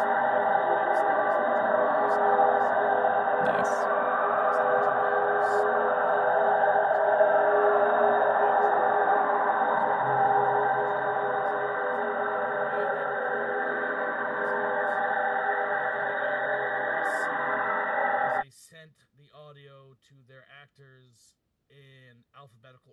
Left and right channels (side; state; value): both; identical; correlation 1.00